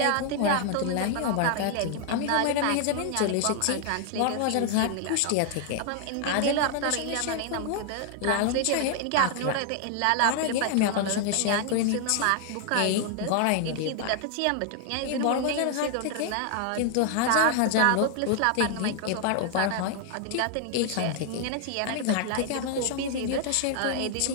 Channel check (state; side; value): different; both; correlation 0.00